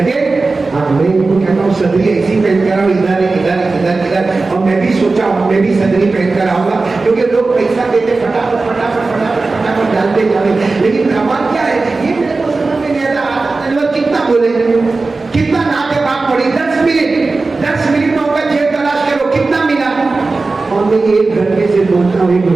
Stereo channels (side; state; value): left; quieter; 3.7 dB